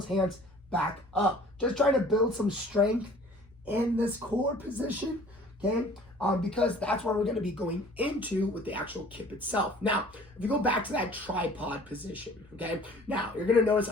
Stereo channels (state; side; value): normal; both; correlation 0.50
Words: hands back up. Just trying to build some strength in this core position, okay? Because that's where we're going to be going into with the actual kip itself. Now, if you go back to that tripod position, okay? Now, you're going to notice